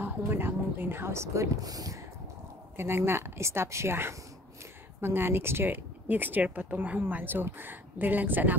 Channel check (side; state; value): both; normal; correlation 0.50